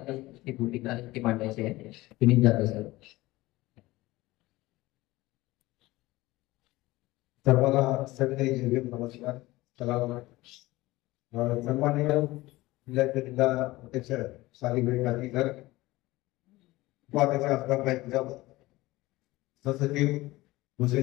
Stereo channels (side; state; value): right; quieter; 19.1 dB